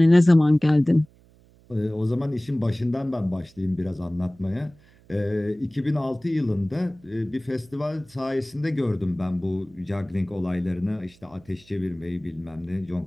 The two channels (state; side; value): noise; right; hum, 28 dB below the sound